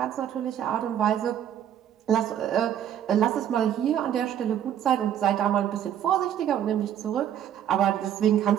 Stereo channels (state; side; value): quieter; left; 10.2 dB